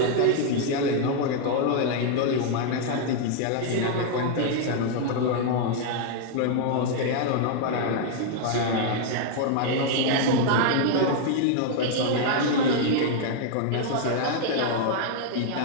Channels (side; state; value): both; different; correlation 0.00